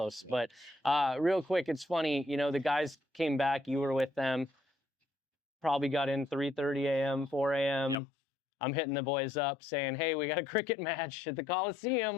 But real quick, it's funny, the guys came back, you were with them, probably got in 3:30 a.m., 4 a.m. Yep. I'm hitting the boys up saying, hey, we got a cricket match at the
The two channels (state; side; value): drops out; right; at 8.0 s